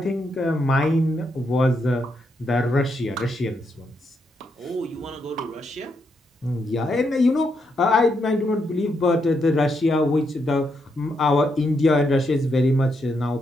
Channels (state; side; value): normal; both; correlation 0.80